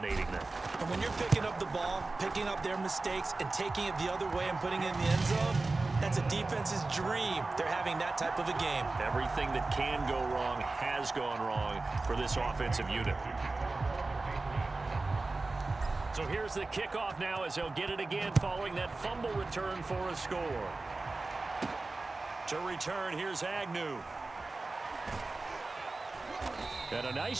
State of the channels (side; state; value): left; quieter; 3.4 dB